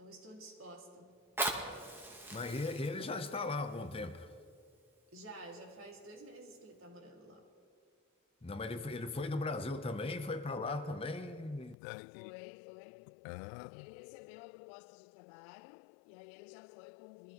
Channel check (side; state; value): right; drops out; at 11.8 s